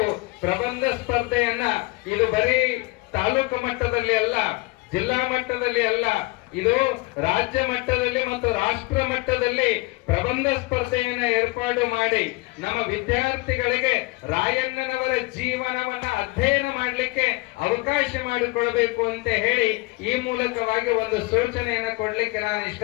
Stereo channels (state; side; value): quieter; right; 23.5 dB